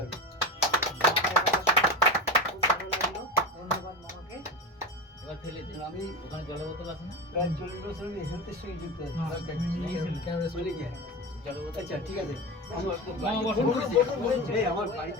ধন্যবাদ মামাকে। আমি ওখানে জলের বোতল আছে না? প্রায় 40 বছর আমি হেলথের সঙ্গে যুক্ত আছি। আচ্ছা, ঠিক আছে। আমার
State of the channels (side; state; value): both; normal; correlation 0.22